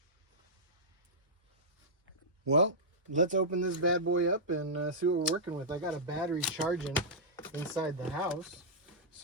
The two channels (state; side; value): normal; both; correlation -0.12